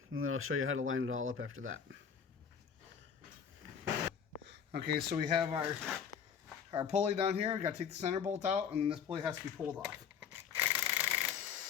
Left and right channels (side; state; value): right; quieter; 7.4 dB